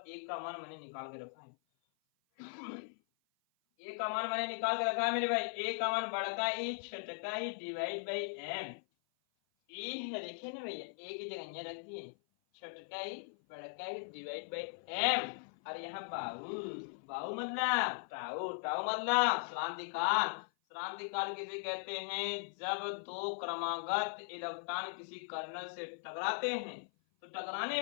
a का मान मैंने निकाल के रखा है। ए का मान मैंने निकाल के रखा है मेरे भाई, ए का मान बड़का ई छोटका ई डिवाइड बाई एम। ई है, देखिए ना भैया, ए की जगह यहाँ रख दिए, छोटका ई बड़का ई डिवाइड बाई एम। और यहाँ बाहु मतलब टाउ, मतलब श्रांतिकाल। श्रांतिकाल किसे कहते हैं? जब दो क्रमागत इलेक्ट्रॉन किसी कर्नल से टकराते हैं, तो टकराने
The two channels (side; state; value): right; silent; 52 dB below the other